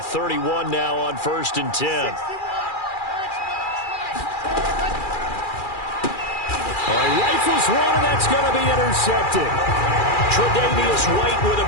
31 now on 1st and 10. All right, rifles one, and that's going to be intercepted. Tre'Davious White with a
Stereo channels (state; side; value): late; right; 2.4 ms